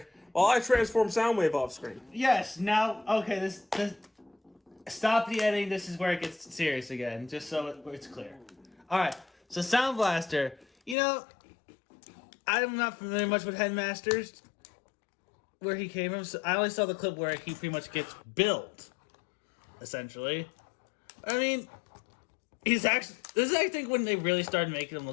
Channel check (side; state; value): right; drops out; at 11.0 s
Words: while I transform Soundwave off screen? Yes. Now, okay. This stop the editing. This is where it gets serious again, just so it's clear. All right. So Soundblaster. I'm not familiar much with Headmasters, where he came from. So I only saw the clip where he pretty much gets built, essentially. I mean, he's actually. This is, I think, when they really started making him